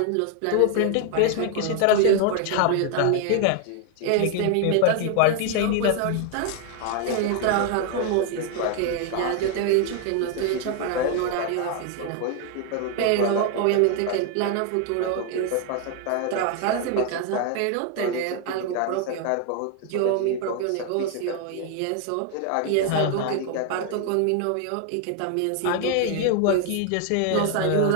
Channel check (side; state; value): both; different; correlation 0.00